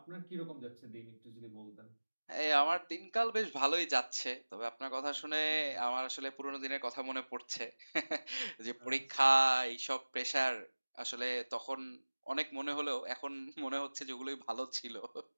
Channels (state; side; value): inverted; both; correlation -1.00